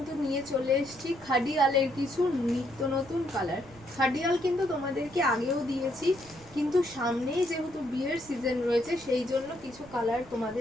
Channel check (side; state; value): right; noise; rumble, 23 dB below the sound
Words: নিয়ে চলে এসেছি খাডিয়ালের কিছু নিত্য নতুন কালার। খাডিয়াল কিন্তু তোমাদেরকে আগেও দিয়েছি, কিন্তু সামনেই যেহেতু বিয়ের সিজন রয়েছে সেই জন্য কিছু কালার